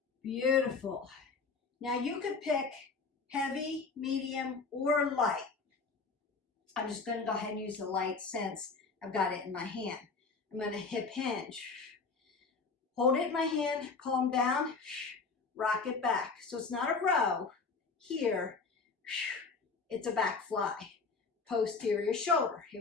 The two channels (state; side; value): quieter; right; 4.6 dB